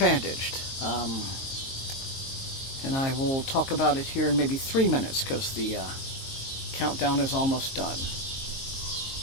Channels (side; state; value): right; late; 22 ms